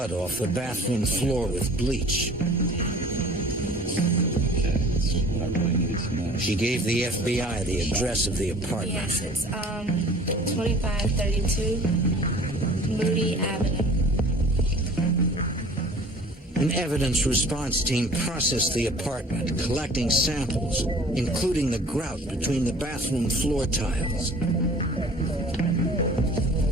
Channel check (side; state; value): both; normal; correlation 0.48